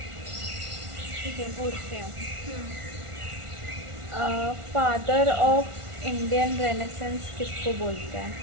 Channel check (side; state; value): left; late; 1.4 ms